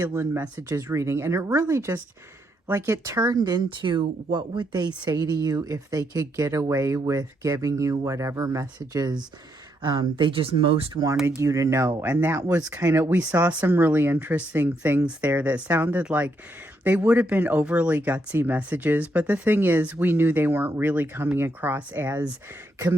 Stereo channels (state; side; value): normal; both; correlation 0.77